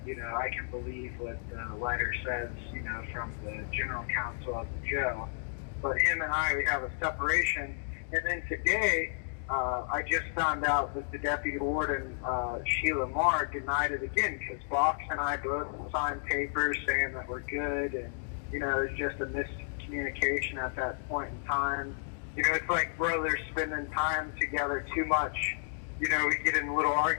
I can believe what the letter says, from the general counsel of the jail. But him and I, we have a separation. And then today, I just found out that the deputy warden, 𝓥𝓲𝓰𝓲, denied it again, because Vox and I both signed papers saying that we're good, and, it was just a miscommunication at that point in time. It's like brothers spending time together too much. We get in little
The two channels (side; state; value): right; silent; digital silence